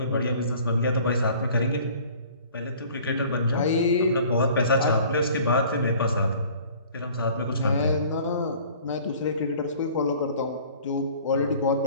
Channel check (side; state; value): both; inverted; correlation -0.50